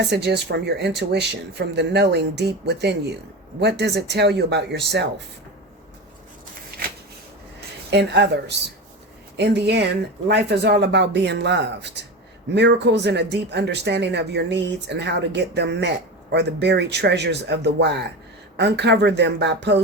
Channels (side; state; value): both; normal; correlation 0.24